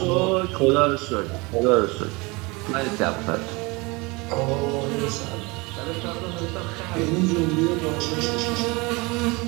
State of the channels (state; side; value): quieter; left; 25.6 dB